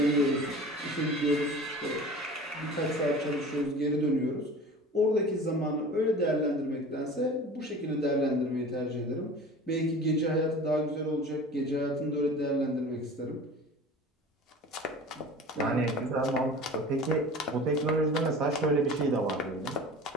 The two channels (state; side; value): normal; both; correlation 0.39